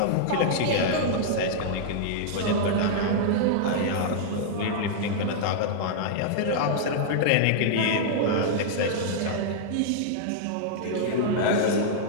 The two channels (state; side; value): different; both; correlation -0.01